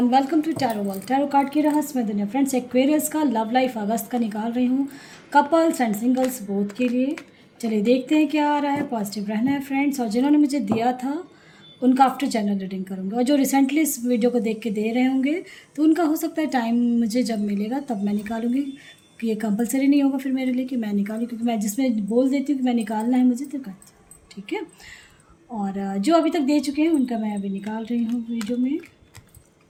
welcome to tarot world. Tarot card की रहस्यमय दुनिया। फ्रेंड्स, एक्वेरियस का लव लाइफ अगस्त का निकाल रही हूँ, कपल्स एंड सिंगल्स बोथ के लिए। चलिए देखते हैं क्या आ रहा है। पॉजिटिव रहना है फ्रेंड्स। और जिन्होंने मुझे दिया था उनका आफ्टर जनरल रीडिंग करूँगी, और जो रिसेंटली इस वीडियो को देख के दे रहे होंगे तो उनका हो सकता है टाइम मुझे जब मिलेगा तब मैं निकालूंगी, कि ये कंपलसरी नहीं होगा फिर मेरे लिए कि मैं निकालूँ, क्योंकि मैं जिसमें बोल देती हूँ कि मैं निकालना है मुझे तो करती हूँ। ठीक है। और जो अभी तक दे चुके हैं उनका मैं अभी निकाल रही हूँ वीडियो में।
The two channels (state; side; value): identical; both; correlation 1.00